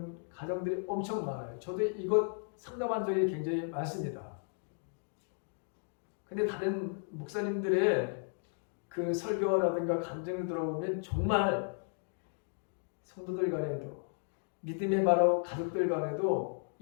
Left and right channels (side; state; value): right; silent; 55 dB below the other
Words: 가정들이 엄청 많아요. 저도 이것 상담한 적이 굉장히 많습니다. 근데 다른 목사님들의 그 설교라든가 간증을 들어보면 정말 성도들 간에도, 믿음의 바로 가족들 간에도